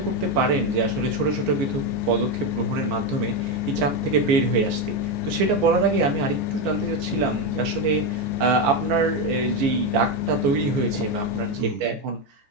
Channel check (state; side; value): late; left; 14 ms